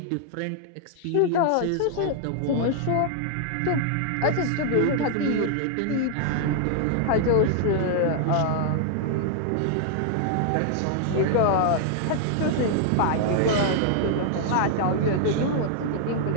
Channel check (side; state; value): both; different; correlation 0.00